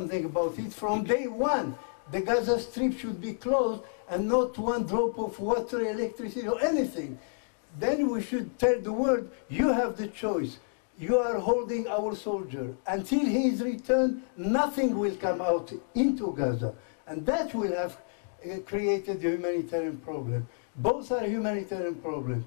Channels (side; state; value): right; silent; digital silence